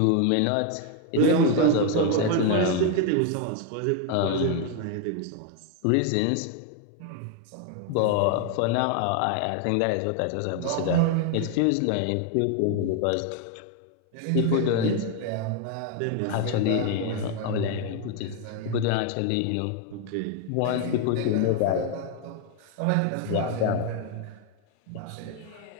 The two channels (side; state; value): both; different; correlation 0.01